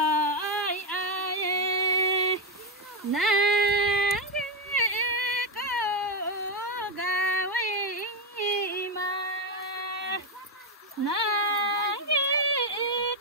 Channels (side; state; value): both; normal; correlation 0.07